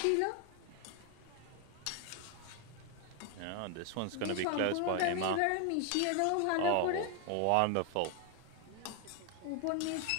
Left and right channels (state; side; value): different; both; correlation 0.01